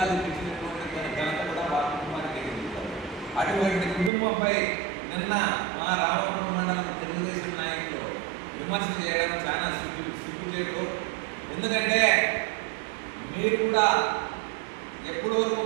ఇచ్చినటువంటి ఘనత కూడా వాళ్ళ కుటుంబానికి ఎదుగుతారు. అటువంటి కుటుంబంపై నిన్న మా రామపురం మండలం తెలుగుదేశం నాయకులు విమర్శ చేయడం చాలా సిగ్గుచేటు. ఎందుకంటే మీరు కూడా ఎప్పటి వరకు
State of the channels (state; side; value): drops out; left; at 4.1 s